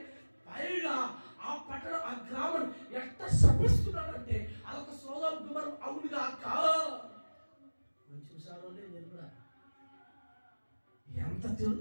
పైగా ఆ పట్టణం, ఆ గ్రామం ఎంత శపిస్తున్నాడంటే అదొక సోదం గుమరం అవునుగా మంచి విషయాలు నేను కూడా ఎంత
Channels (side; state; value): both; inverted; correlation -1.00